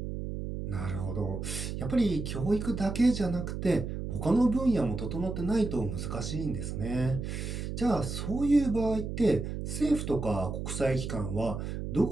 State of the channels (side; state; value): right; noise; hum, 5 dB below the sound